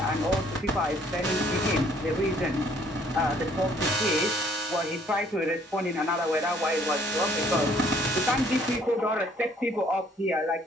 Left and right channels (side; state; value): both; normal; correlation 0.62